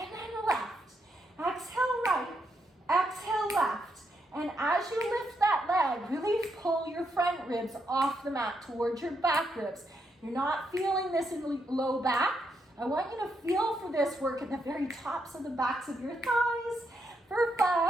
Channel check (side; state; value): both; normal; correlation 0.80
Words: then left. Exhale right. Exhale left. And as you lift that leg, really pull your front ribs off the mat towards your back ribs. You're not feeling this in the low back. I want you to feel for this work at the very tops of the backs of your thighs. For